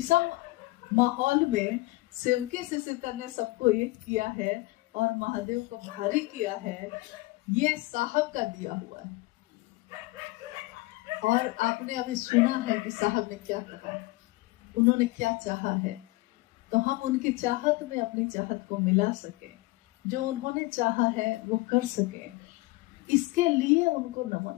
माहौल में सेवके से सीता ने सबको एक किया है और महादेव को भारी किया है। ये साहब का दिया हुआ है। और आपने अभी सुना है कि साहब ने क्या कहा, उन्होंने क्या चाहा है, तो हम उनकी चाहत में अपनी चाहत को मिला सके, जो उन्होंने चाहा है वो कर सके, इसके लिए उनको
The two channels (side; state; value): right; quieter; 21.3 dB